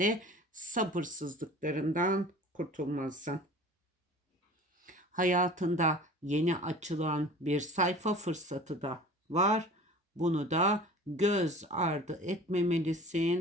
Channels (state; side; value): normal; both; correlation 0.42